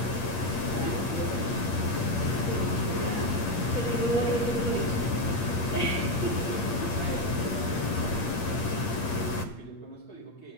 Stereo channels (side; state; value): right; late; 8.6 ms